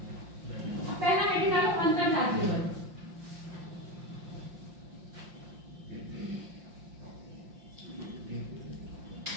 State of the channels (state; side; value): late; left; 5.7 ms